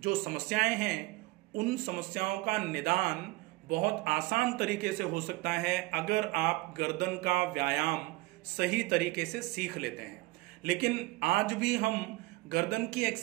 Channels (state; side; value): quieter; left; 21.7 dB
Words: समस्याएं हैं उन समस्याओं का निदान बहुत आसान तरीके से हो सकता है अगर आप गर्दन का व्यायाम सही तरीके से सीख लेते हैं। लेकिन आज भी हम गर्दन की